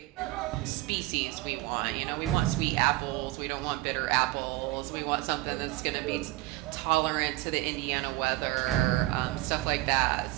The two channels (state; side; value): quieter; left; 18.5 dB